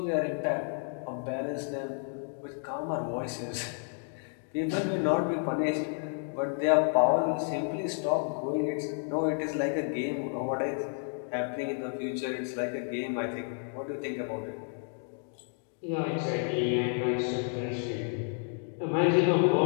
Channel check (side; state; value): right; silent; 57 dB below the other